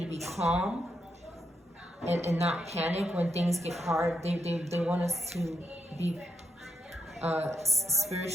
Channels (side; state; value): both; normal; correlation 0.81